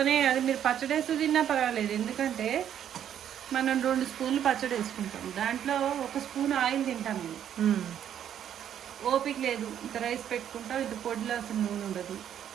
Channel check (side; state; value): left; quieter; 9.8 dB